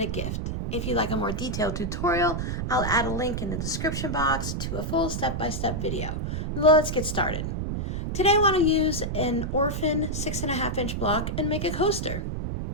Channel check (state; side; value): noise; right; rumble, 2 dB below the sound